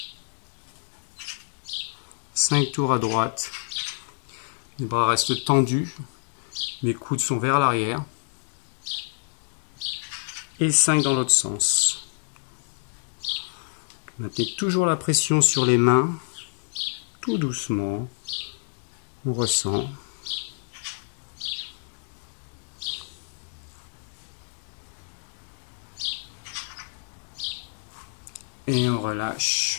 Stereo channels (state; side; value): silent; right; digital silence